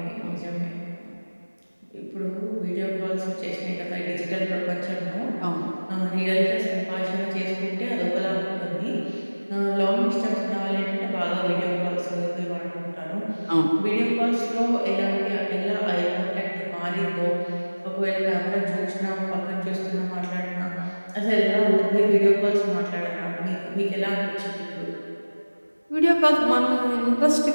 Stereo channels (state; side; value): inverted; both; correlation -1.00